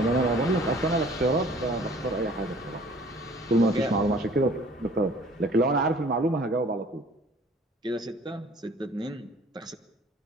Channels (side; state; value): both; normal; correlation 0.52